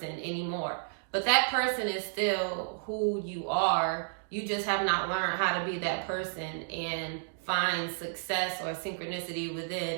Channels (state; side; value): silent; left; digital silence